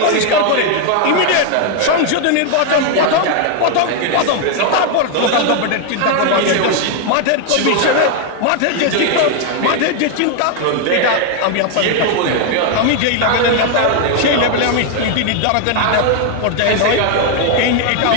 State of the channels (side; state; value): both; different; correlation 0.00